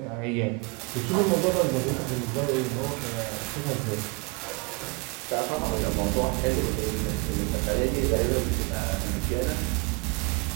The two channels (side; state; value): left; quieter; 27.7 dB